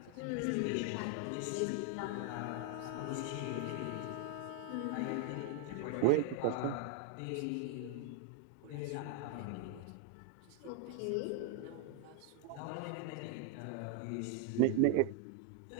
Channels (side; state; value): both; different; correlation 0.01